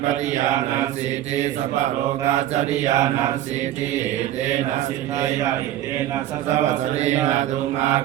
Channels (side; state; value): left; quieter; 12.9 dB